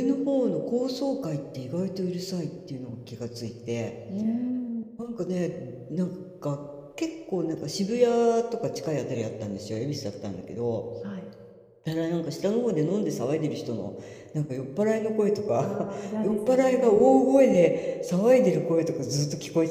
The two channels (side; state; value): both; identical; correlation 1.00